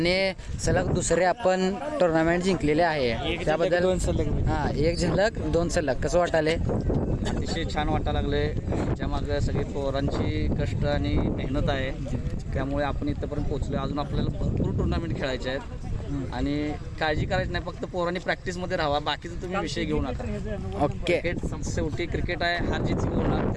सलग दुसरे आपण टुर्नामेंट जिंकलेले आहे त्याबद्दल 2 सलग हां 1 झलक 2 सलग कसं वाटायले? अतिशय छान वाटायला लागले. त्याच्यामागं सगळी पोरांची कष्ट आणि मेहनत आहे त्यामुळे आपण इथंपर्यंत पोहोचलो. अजून आपल्याला भरपूर टुर्नामेंट खेळायचे आहेत आणि काळजी करायची नाही फक्त पोरांनी प्रॅक्टिसमध्ये राहावा बाकीचं तुम्ही विषय घेऊ नका. ओके क्रिकेट शेवटी क्रिकेट आहे हार जीत होणार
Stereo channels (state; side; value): identical; both; correlation 1.00